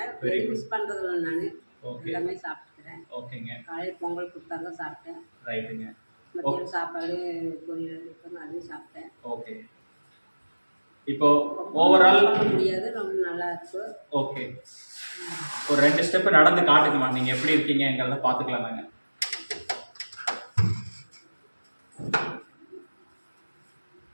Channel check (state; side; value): inverted; both; correlation -1.00